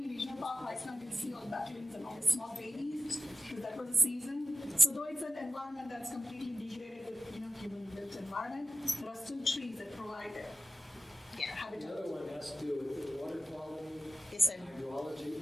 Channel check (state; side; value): normal; both; correlation 0.93